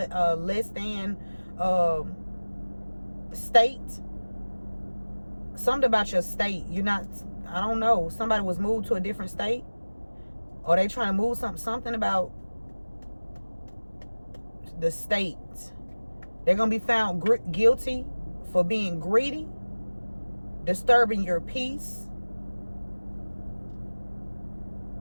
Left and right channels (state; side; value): inverted; both; correlation -1.00